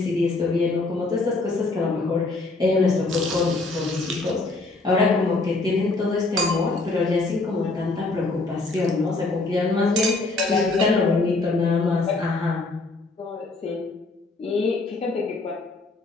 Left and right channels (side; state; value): right; quieter; 3.3 dB